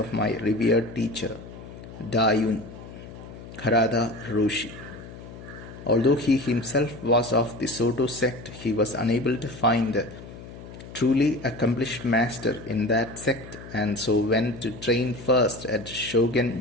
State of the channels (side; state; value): left; noise; hum, 15 dB below the sound